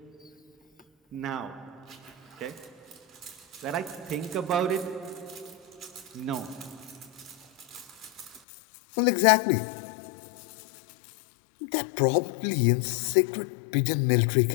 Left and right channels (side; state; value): right; drops out; at 8.4 s